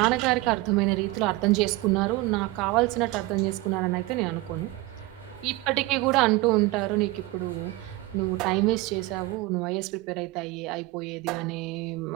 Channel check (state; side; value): quieter; left; 19.7 dB